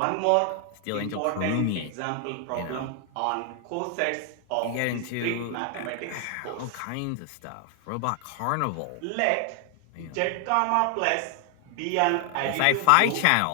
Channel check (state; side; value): different; both; correlation 0.00